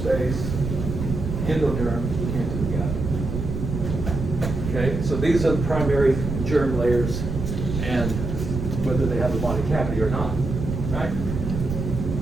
endoderm, into the gut. Okay, so these are the primary germ layers, and whether they have a body cavity or not, right?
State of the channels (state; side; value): noise; right; rumble, 4 dB below the sound